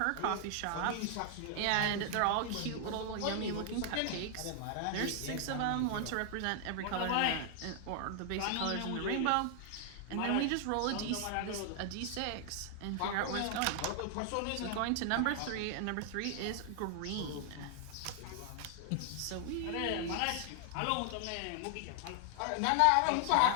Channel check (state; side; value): different; both; correlation 0.00